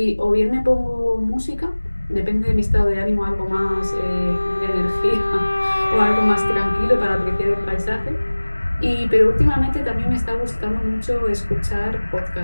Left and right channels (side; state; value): both; inverted; correlation -1.00